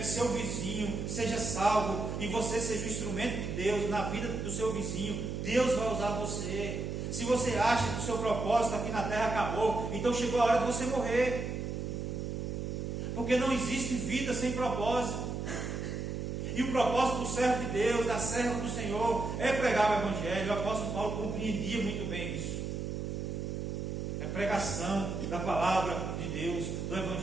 seu vizinho seja salvo e você seja o instrumento de Deus na vida do seu vizinho, Deus vai usar você. Se você acha que o seu propósito aqui na terra acabou, então chegou a hora de você morrer, porque não existe vida sem propósito. E o propósito do servo de Deus, da serva do Senhor, é pregar o Evangelho. O apóstolo Paulo compreendia muito bem isso. É pregação da palavra de Deus, do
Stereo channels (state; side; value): noise; right; hum, 4 dB below the sound